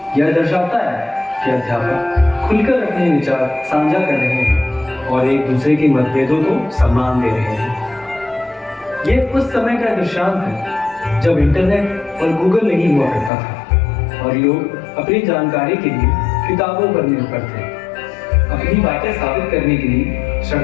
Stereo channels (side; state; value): right; drops out; at 13.3 s